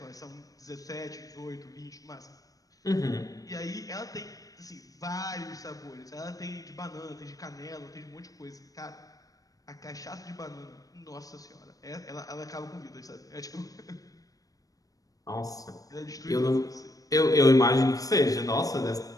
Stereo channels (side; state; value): right; late; 0.17 ms